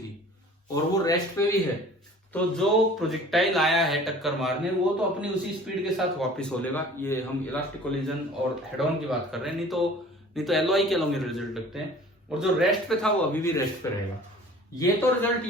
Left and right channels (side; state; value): both; normal; correlation 0.47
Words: और वो रेस्ट पे भी है, तो जो प्रोजेक्टाइल आया है टक्कर मारने, वो तो अपनी उसी स्पीड के साथ वापस हो लेगा। ये हम इलास्टिक कोलिजन और हेड ऑन की बात कर रहे हैं, नहीं तो एलओआई के अलॉन्ग रिजल्ट लगते हैं। और जो रेस्ट पे था वो अभी भी रेस्ट पे रहेगा। ये तो रिजल्ट